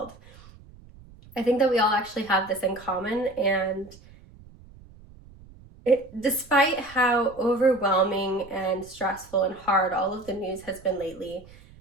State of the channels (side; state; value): right; noise; rumble, 22 dB below the sound